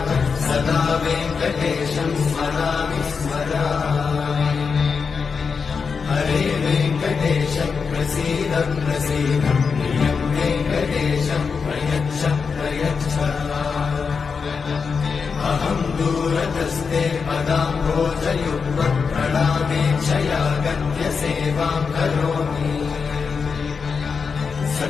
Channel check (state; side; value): quieter; right; 5.5 dB